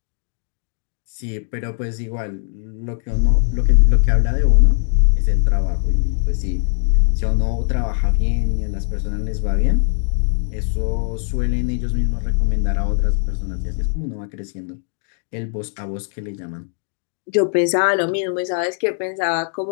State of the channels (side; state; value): right; silent; digital silence